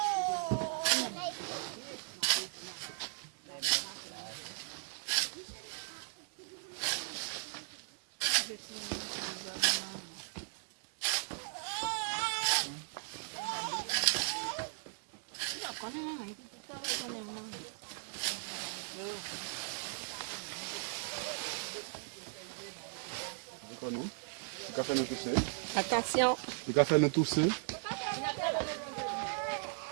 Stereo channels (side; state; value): left; silent; digital silence